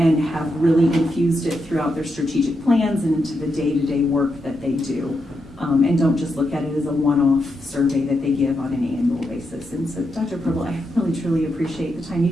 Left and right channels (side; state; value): both; normal; correlation 0.84